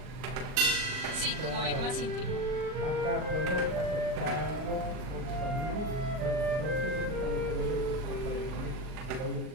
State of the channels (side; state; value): left; late; 39 ms